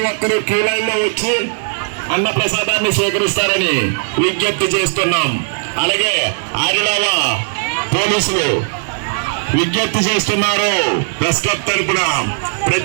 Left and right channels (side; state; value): left; silent; 59 dB below the other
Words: ఒక్కరూ క్యూ లైన్ లో వచ్చి అన్న ప్రసాదాన్ని స్వీకరిస్తారని విజ్ఞప్తి చేస్తున్నాం. అలాగే ఆదిలావ పోలీసులు విజ్ఞప్తి చేస్తున్నారు. ప్రెస్ క్లబ్ తరపున